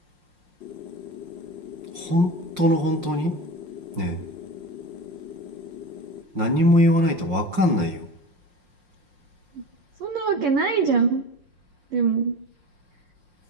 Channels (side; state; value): left; late; 5.6 ms